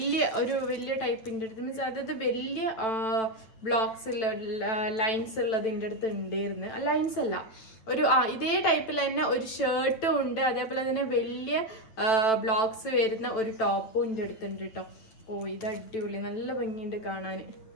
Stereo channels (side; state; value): right; late; 9.0 ms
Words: ഒരു വലിയ ടൈപ്പിൻ്റെ അടുത്ത് മീൻസ് അതായത് വലിയ ബ്ലോക്സ് ഉള്ള ലൈൻസ് ഉള്ളത് ഇതിൻ്റെ അടുത്ത് ഉണ്ടായിരുന്നു. ലൈൻസ് അല്ല, ഒരു ഇതേ ടൈപ്പിൽ തന്നെ ഒരു ഷർട്ടും ഉണ്ട്. അതേപോലെ തന്നെ വലിയ ബ്ലോക്സ് വരുന്ന ഒരു ടോപ്പും ഇതിൻ്റെ അടുത്തുണ്ട് കേട്ടോ. ഇത് അടിപൊളി, നല്ല ഭംഗിയുണ്ട് കാണാൻ.